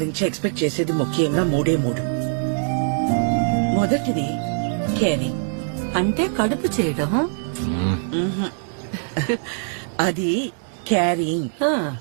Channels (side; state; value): left; silent; digital silence